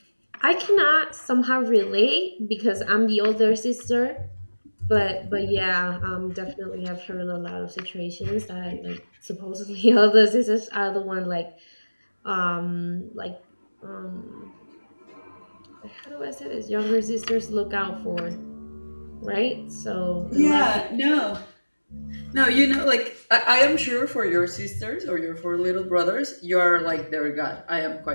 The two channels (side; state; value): both; inverted; correlation -1.00